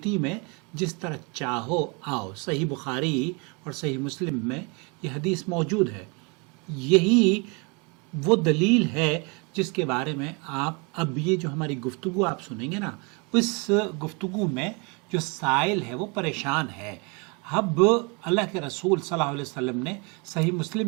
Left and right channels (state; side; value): quieter; left; 31.5 dB